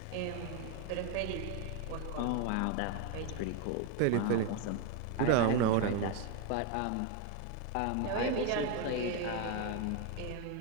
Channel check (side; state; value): both; different; correlation 0.02